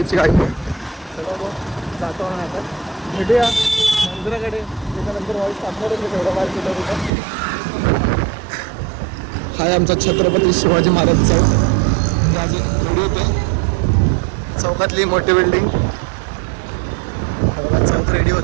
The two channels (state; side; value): drops out; left; at 7.1 s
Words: काही नाही. चला मग जातो ना आता, भेटूया मंदिराकडे. त्याच्यानंतर व्हॉइस टाकणार आहे तेवढा बाहेर कुठं. हाय आमचा छत्रपती शिवाजी महाराज चौक. चौकातली मोठी बिल्डिंग. चौक रेडी